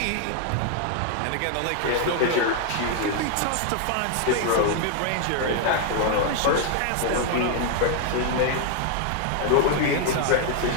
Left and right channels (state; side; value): different; both; correlation 0.00